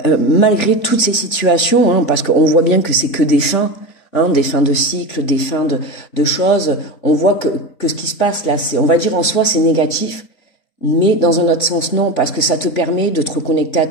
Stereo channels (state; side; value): late; right; 3.5 ms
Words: malgré toutes ces situations, hein, parce qu'on voit bien que c'est que des fins de cycle, des fins de choses, on voit que ce qui se passe là, on va dire en soi c'est négatif, mais dans un autre sens non, parce que ça te permet de te reconnecter à